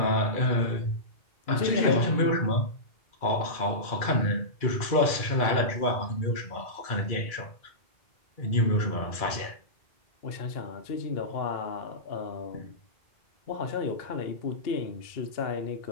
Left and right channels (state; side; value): late; right; 2.3 ms